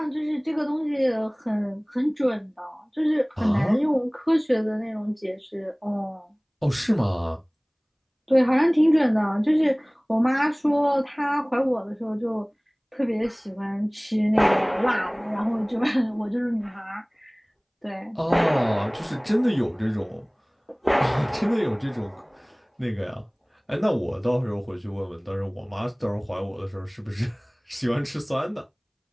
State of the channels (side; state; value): both; identical; correlation 1.00